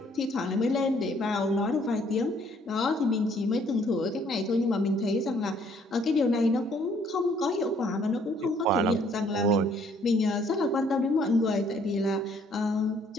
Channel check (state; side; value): normal; both; correlation 0.63